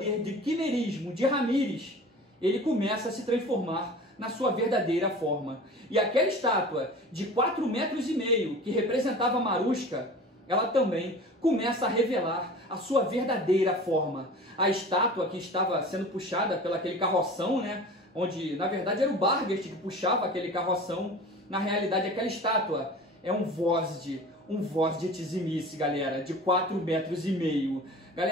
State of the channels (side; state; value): both; normal; correlation 0.39